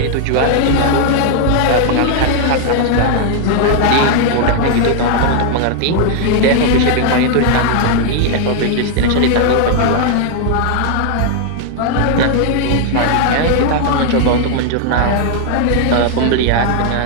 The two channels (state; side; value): different; both; correlation 0.00